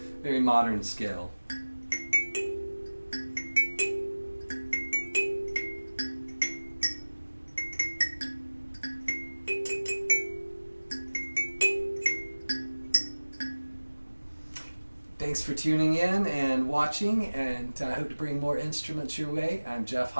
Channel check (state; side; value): inverted; both; correlation -1.00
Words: very modern scale. Thanks for tuning in and watching, and I hope to bring more instruments your way. I'm Jeff